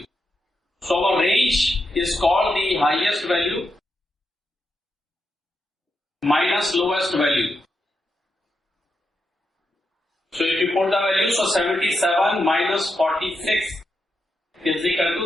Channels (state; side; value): normal; both; correlation 0.84